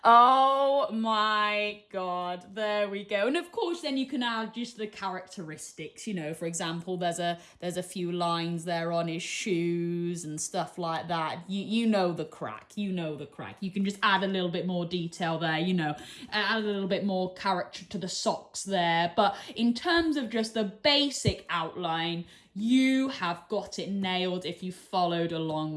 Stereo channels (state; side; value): identical; both; correlation 1.00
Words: Oh my God, there we go. And of course then you can add just the characteristics, you know, for example, there's a few lines there on his shoes and stuff like that. You know the crack, you know the crack. You can just add a little bit more detail there, you know, add a little bit more character to the socks there. But in terms of just the basic outline, you have got it nailed if you followed along